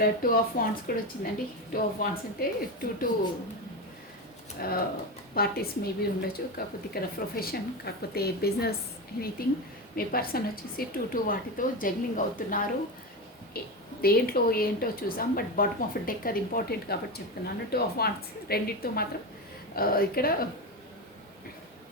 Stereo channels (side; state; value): both; normal; correlation 0.18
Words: 2 of Wands కూడా వచ్చిందండి. 2 of Wands అంటే 2 పార్టీస్ మేబీ ఉండొచ్చు, కాకపోతే ఇక్కడ ప్రొఫెషన్, కాకపోతే బిజినెస్, ఎనీథింగ్. మీ పర్సన్ వచ్చేసి 2 వాటితో జగ్లింగ్ అవుతున్నారు. దేంట్లో ఏంటో చూసాం, బట్ బాటమ్ ఆఫ్ డెక్ అది ఇంపార్టెంట్ కాబట్టి చెప్తున్నాను. 2 of Wands రెండింటితో మాత్రం ఇక్కడ